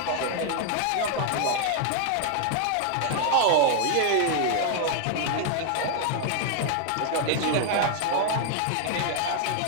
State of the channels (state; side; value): different; both; correlation 0.00